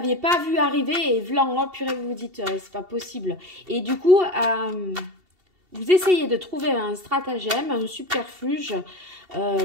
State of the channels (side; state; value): left; late; 2.7 ms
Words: pas vu arriver. Et vlan, oh purée, vous vous dites, c'est pas possible. Et du coup, vous essayez de trouver un stratagème, un subterfuge,